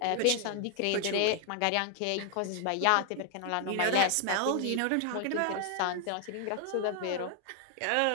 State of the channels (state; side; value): different; both; correlation 0.00